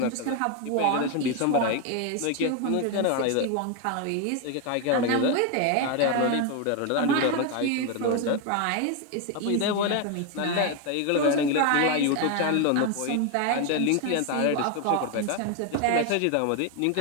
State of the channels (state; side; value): different; both; correlation 0.01